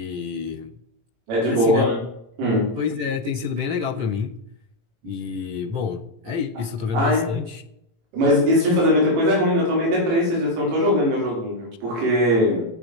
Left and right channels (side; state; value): left; late; 18 ms